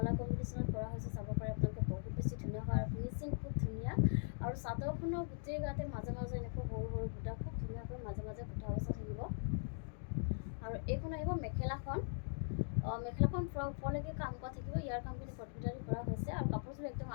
কম্বিনেশ্যনত কৰা হৈছে, চাব পাৰে আপোনালোকে বহুত বেছি ধুনীয়া হয় আৰু ফিনিচিং খুব ধুনীয়া। আৰু চাদৰখনৰ গোটেই গাতে মাজে মাজে এনেকৈ সৰু সৰু বুটা খুব ধুনীয়াকৈ মাজে মাজে বুটা বচা থাকিব। আৰু এইখন আহিব মেখেলাখন। মেখেলাখন পূৰা ওপৰলৈকে কাম কৰা থাকিব, ইয়াৰ কামখিনি কটমিটাৰী কৰা হৈছে আৰু কাপোৰযোৰ একদম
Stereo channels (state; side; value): silent; right; digital silence